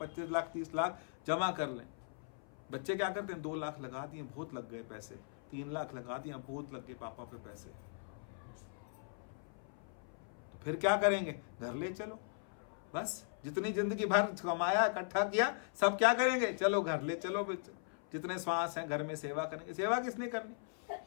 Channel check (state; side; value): silent; right; 52 dB below the other